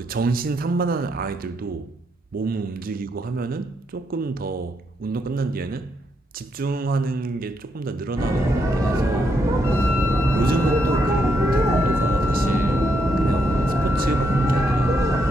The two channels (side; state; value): both; normal; correlation 0.78